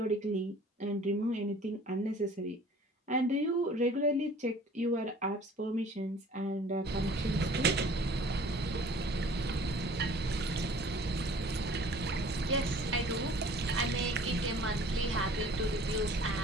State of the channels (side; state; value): both; normal; correlation 0.49